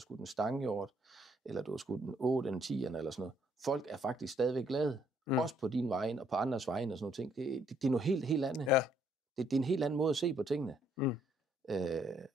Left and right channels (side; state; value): both; normal; correlation 0.68